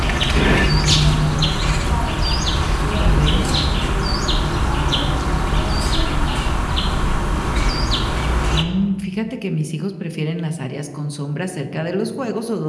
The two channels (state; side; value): identical; both; correlation 1.00